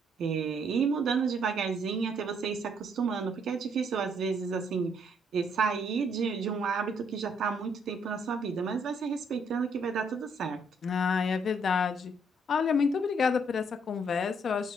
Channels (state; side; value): normal; both; correlation 0.69